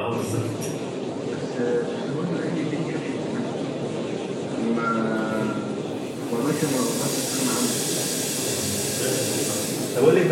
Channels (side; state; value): both; identical; correlation 1.00